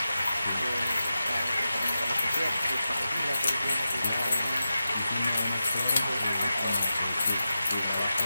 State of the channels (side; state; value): both; inverted; correlation -0.91